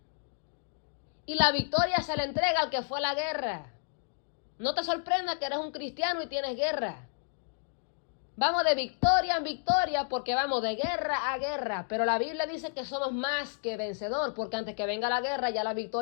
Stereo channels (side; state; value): right; silent; digital silence